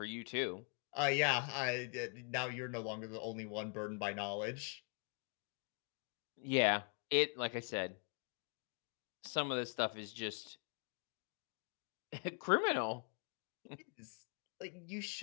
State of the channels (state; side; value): quieter; right; 38.3 dB